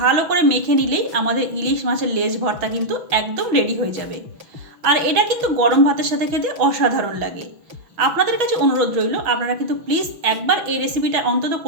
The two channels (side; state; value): left; late; 6.1 ms